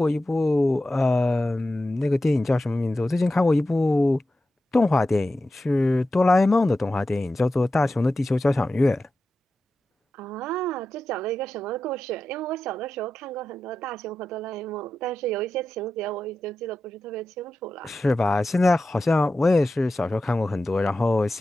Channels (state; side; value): normal; both; correlation 0.92